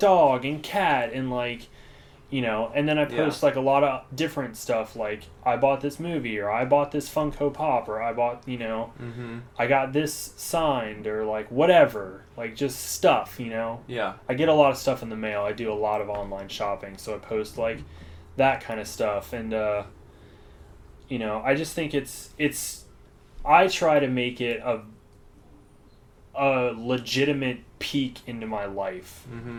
and cat and like, and then I post like a lot of different stuff, like I bought this movie, or I bought this Funko Pop, or I bought, I got this signed, or like whatever, like just stuff, Yeah. I get a lot of stuff in the mail. I do a lot of online shopping, so I post like that kind of stuff, and I just think it's I try to make it a legitimate peek into my life,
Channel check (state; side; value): identical; both; correlation 1.00